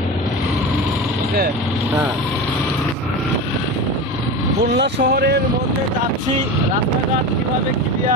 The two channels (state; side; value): normal; both; correlation 0.26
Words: ওকে। হ্যাঁ খুলনা শহরের মধ্যে যাচ্ছি, রাস্তাঘাট কীভাবে